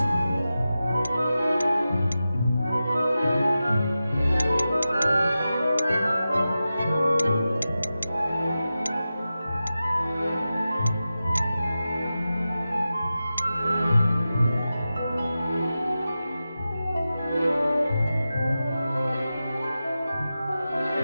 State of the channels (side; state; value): both; inverted; correlation -0.93